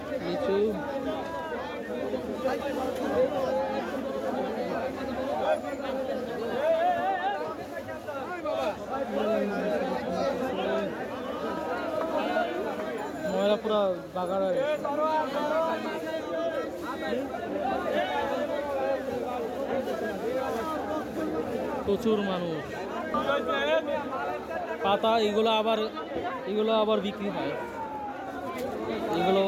লিচু। ময়লা পুরো বাগার হয়ে গেছে। প্রচুর মানুষ। পাতা এগুলো আবার বিক্রি হয়,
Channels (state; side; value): identical; both; correlation 1.00